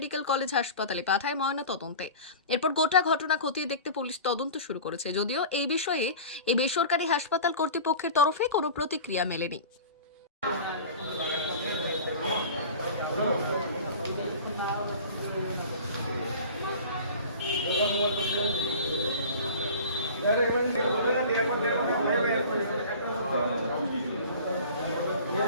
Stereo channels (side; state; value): both; inverted; correlation -0.38